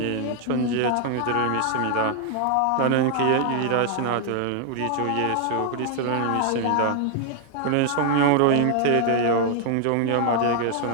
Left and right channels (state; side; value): different; both; correlation 0.00